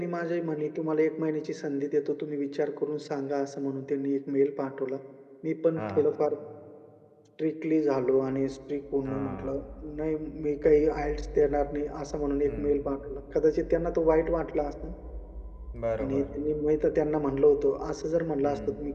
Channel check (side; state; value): both; identical; correlation 1.00